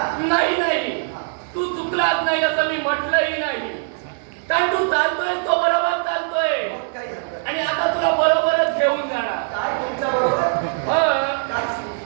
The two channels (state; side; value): silent; left; digital silence